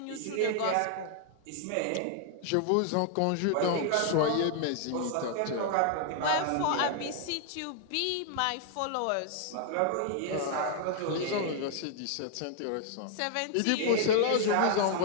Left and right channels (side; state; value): both; different; correlation 0.00